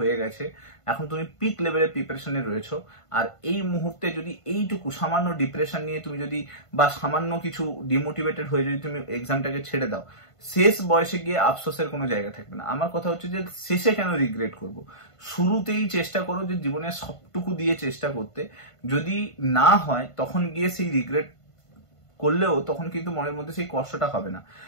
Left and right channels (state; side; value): late; right; 1.5 ms